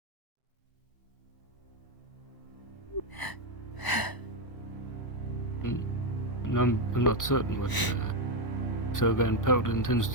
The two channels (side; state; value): right; late; 1.0 ms